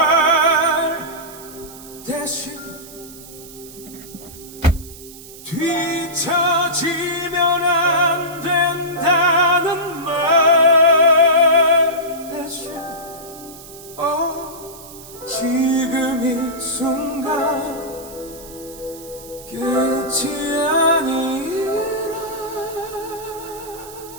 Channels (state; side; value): noise; right; hiss, 17 dB below the sound